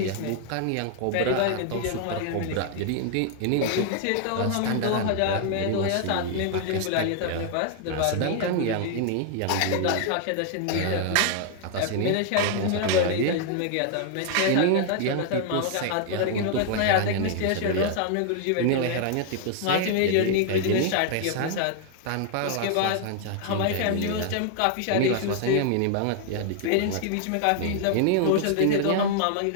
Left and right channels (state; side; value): different; both; correlation 0.00